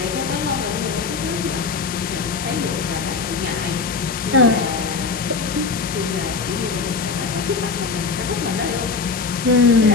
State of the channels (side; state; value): right; quieter; 4.8 dB